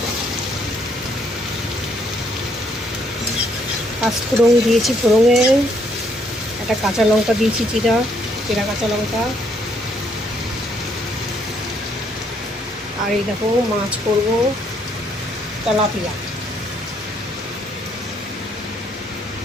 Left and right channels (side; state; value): both; normal; correlation 0.70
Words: পাঁচফোড়ন দিয়েছি, ফোড়নে একটা কাঁচা লঙ্কা দিয়েছি, চিরা কাঁচা লঙ্কা। আর এই দেখো মাছ করবো, তেলাপিয়া।